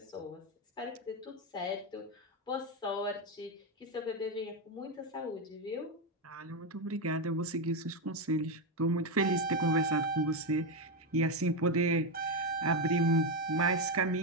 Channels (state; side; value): normal; both; correlation 0.08